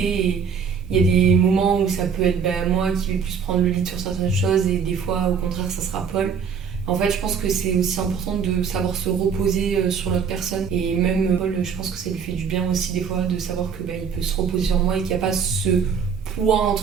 et il y a des moments où ça peut être moi qui vais plus prendre le lead sur certaines choses, et des fois au contraire ça sera Paul. En fait je pense que c'est aussi important de savoir se reposer sur l'autre personne, et même Paul, je pense que ça lui fait du bien aussi des fois de savoir que il peut se reposer sur moi, et qu'il n'y a pas ce poids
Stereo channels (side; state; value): left; quieter; 6.5 dB